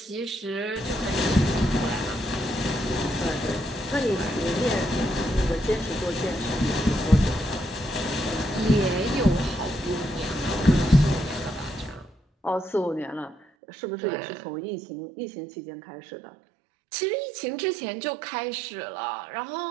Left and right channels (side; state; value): left; drops out; at 13.5 s